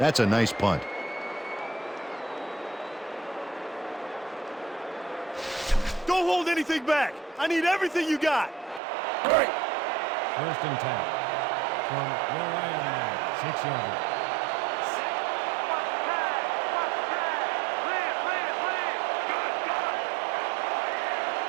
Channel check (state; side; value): drops out; left; at 8.8 s